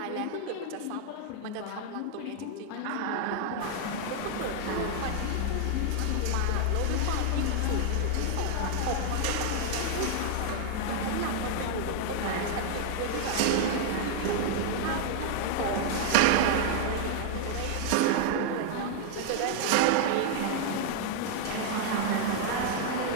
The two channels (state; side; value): different; both; correlation 0.00